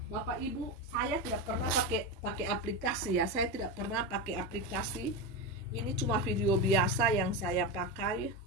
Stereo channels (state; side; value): normal; both; correlation 0.16